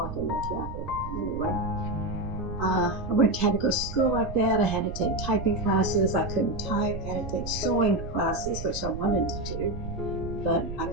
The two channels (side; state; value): right; noise; rumble, 9 dB below the sound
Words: in the traffic. Anyway, had to go to school like that. I had to take typing classes. I couldn't type. I had to take sewing classes, which I wanted to do, but I